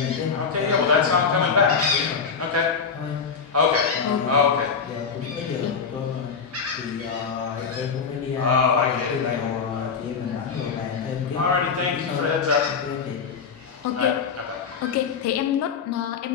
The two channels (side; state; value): right; quieter; 5.9 dB